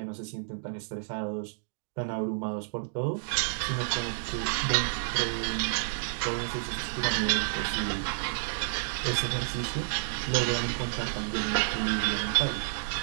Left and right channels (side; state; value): left; silent; digital silence